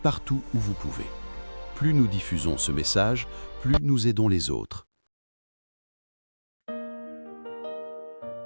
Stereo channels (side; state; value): both; inverted; correlation -1.00